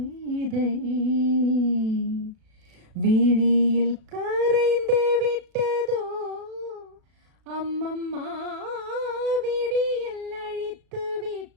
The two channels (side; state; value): left; late; 37 ms